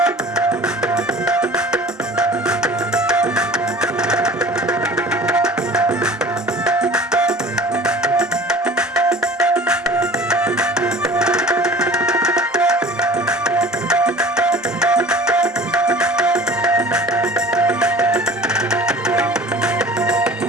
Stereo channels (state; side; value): normal; both; correlation 0.44